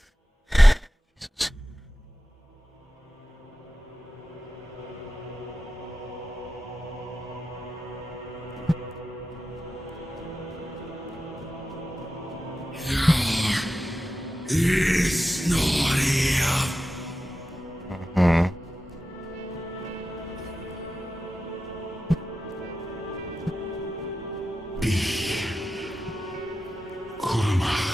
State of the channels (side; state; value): both; normal; correlation 0.92